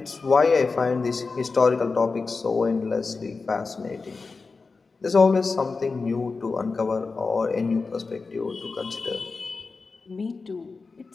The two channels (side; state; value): right; quieter; 4.2 dB